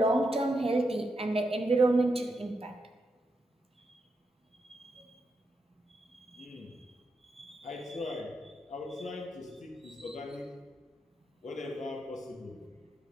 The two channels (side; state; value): both; normal; correlation 0.84